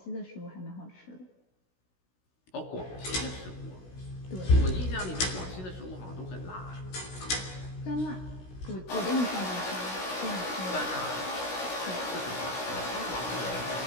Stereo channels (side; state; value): right; late; 16 ms